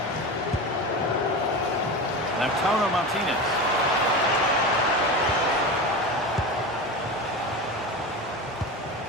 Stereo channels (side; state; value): both; normal; correlation 0.25